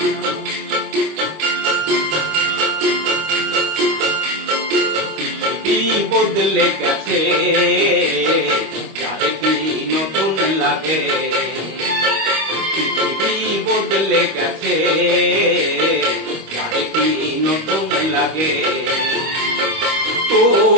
পৃথিবী বদলে গেছে যা দেখি নতুন লাগে পৃথিবী বদলে গেছে যা দেখি নতুন লাগে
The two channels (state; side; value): late; left; 25 ms